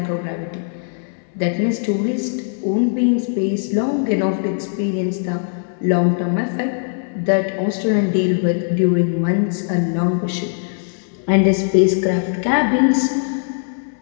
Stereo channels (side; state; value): right; silent; 66 dB below the other